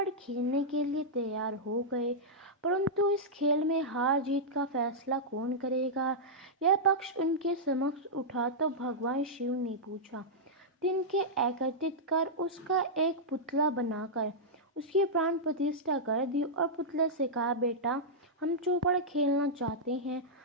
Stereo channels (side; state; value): both; normal; correlation -0.09